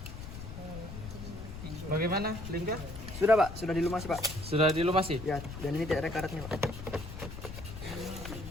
Bagaimana, Lingga? Sudah Pak, sudah dilumasi Pak. Sudah dilumasi? Ya, dan ini tidak ada karatnya Pak.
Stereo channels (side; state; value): left; noise; rumble, 10 dB below the sound